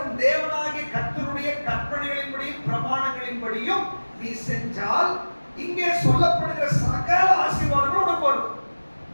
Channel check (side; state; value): both; inverted; correlation -1.00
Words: உன் தேவனாகிய கர்த்தருடைய கற்பனைகளின்படியும் பிரமாணங்களின்படியும் நீ செஞ்சால் இங்கே சொல்லப்படுகிற சகல ஆசீர்வாதங்களும் உனக்கு வரும்.